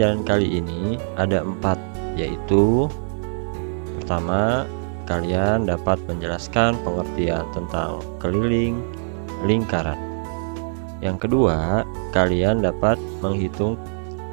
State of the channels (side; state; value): left; silent; 64 dB below the other